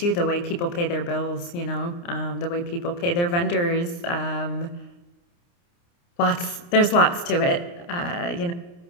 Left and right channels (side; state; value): right; late; 29 ms